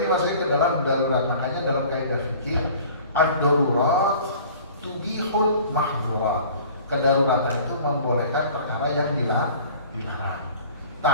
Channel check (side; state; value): both; inverted; correlation -0.47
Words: masuknya ke dalam darurat. Makanya dalam kaidah fikih, ad-darurat tubihul mahdhurat. Kedaruratan itu membolehkan perkara yang dilarang.